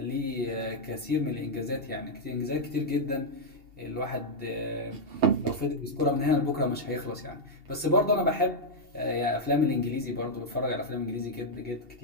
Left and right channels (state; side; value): late; left; 2.7 ms